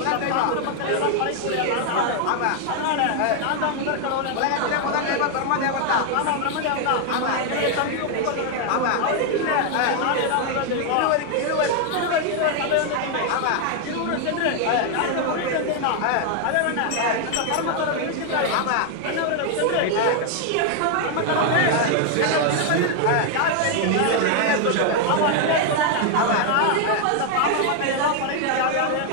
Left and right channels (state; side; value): different; both; correlation 0.00